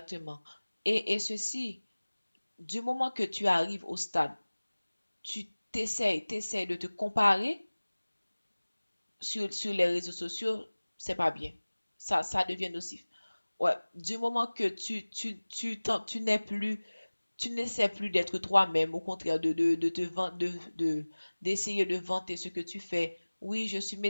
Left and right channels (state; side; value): inverted; both; correlation -1.00